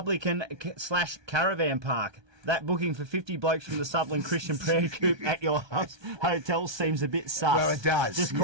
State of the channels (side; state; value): left; late; 1.2 ms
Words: / Caravan Park. That booking for 50 blokes from the Sutherland Christian Prayer Group at your hotel seems a bit sus. Well, it does. Just Yeah.